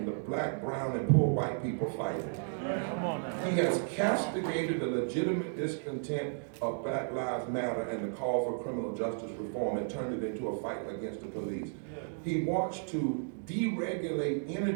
the black, brown, and poor white people fight it. He has castigated the legitimate discontent of Black Lives Matter and the call for criminal justice reform and turned it into a fight against the police. He wants to deregulate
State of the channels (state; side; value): silent; left; digital silence